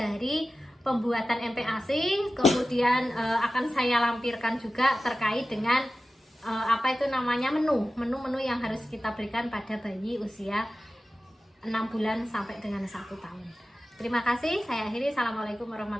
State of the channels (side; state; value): both; normal; correlation 0.95